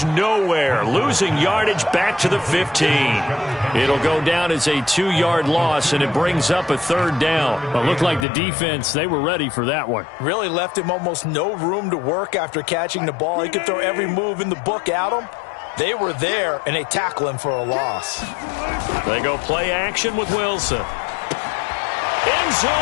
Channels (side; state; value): right; drops out; at 8.2 s